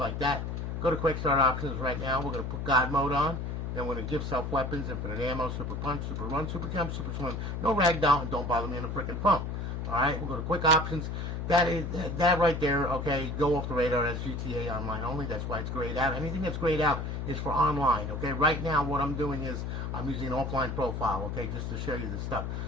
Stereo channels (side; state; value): left; noise; hum, 4 dB below the sound